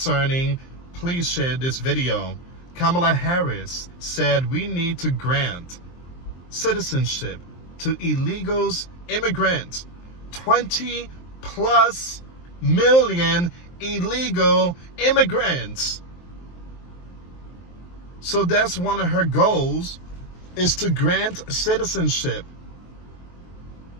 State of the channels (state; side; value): late; right; 23 ms